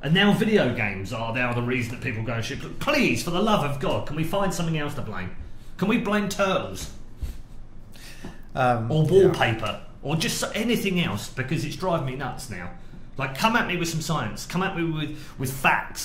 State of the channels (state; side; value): identical; both; correlation 1.00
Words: And now video games are now the reason that people go and shoot. Please, for the love of God, can we find something else to blame? Can we blame turtles? Or wallpaper? Or just anything else? Because it's driving me nuts now. Like, come at me with some science. Come at me with